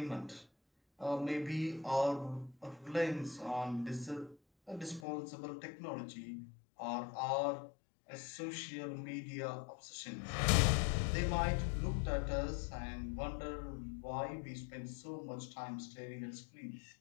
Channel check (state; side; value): drops out; right; at 5.1 s